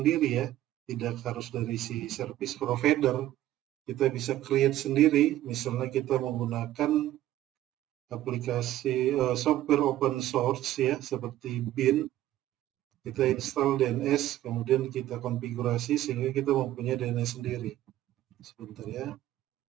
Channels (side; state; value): left; quieter; 13.8 dB